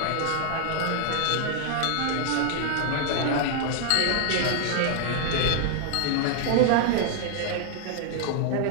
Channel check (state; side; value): different; both; correlation 0.00